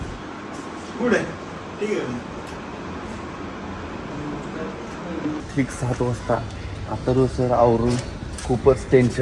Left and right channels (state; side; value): identical; both; correlation 1.00